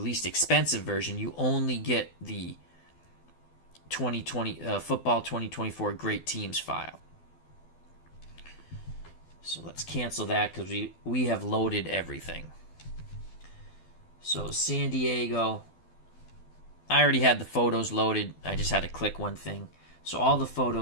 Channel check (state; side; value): late; right; 12 ms